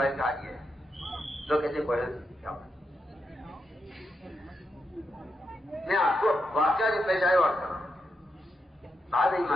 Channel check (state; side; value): normal; both; correlation 0.85